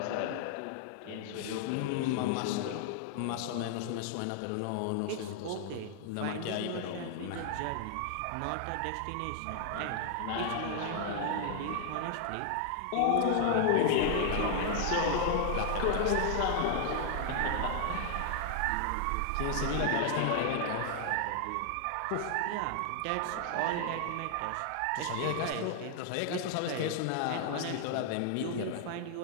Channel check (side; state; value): both; different; correlation 0.00